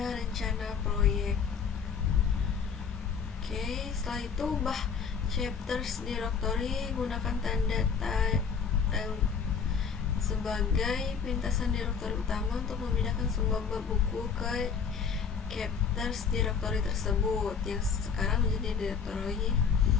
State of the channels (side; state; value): right; quieter; 6.3 dB